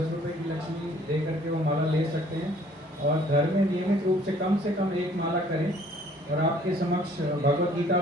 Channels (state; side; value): normal; both; correlation 0.57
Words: रुपये की लक्ष्मी दे करके वो माला ले सकते हैं और घर में नियमित रूप से कम 1 माला करें। और आपके समक्ष भगवत गीता